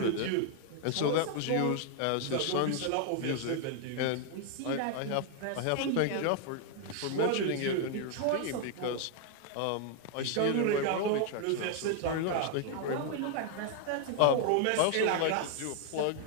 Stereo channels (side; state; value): both; different; correlation 0.00